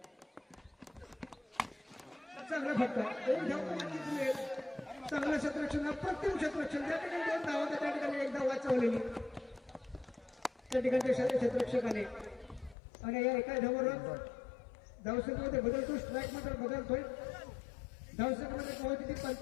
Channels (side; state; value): right; drops out; at 12.8 s